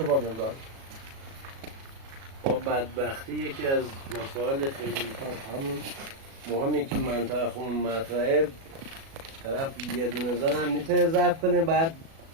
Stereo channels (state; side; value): late; left; 37 ms